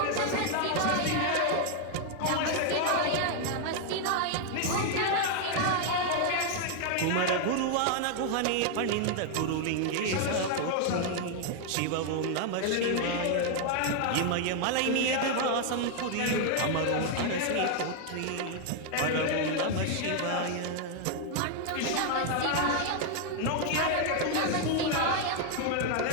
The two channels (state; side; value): different; both; correlation 0.00